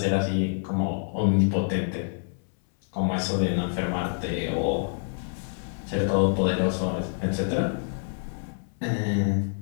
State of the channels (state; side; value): silent; right; 60 dB below the other